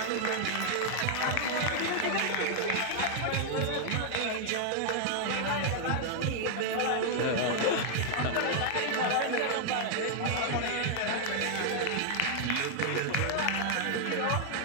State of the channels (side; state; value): both; different; correlation 0.00